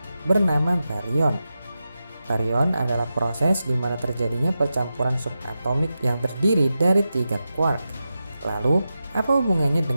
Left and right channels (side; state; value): both; inverted; correlation -0.91